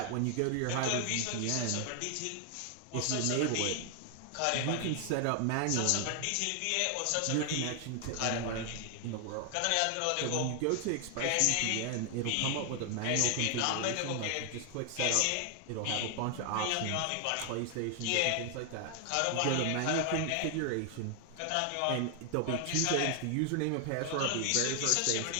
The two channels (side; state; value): both; different; correlation 0.00